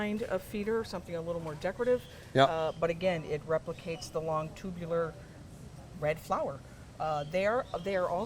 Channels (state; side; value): identical; both; correlation 1.00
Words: of feeder, something a little more decorative. Yep. But again, it replicates the long tubular red flower. They are